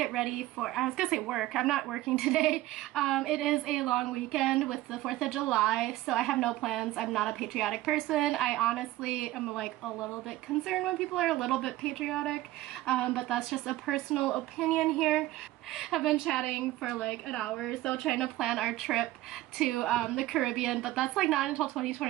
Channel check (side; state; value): left; quieter; 16.4 dB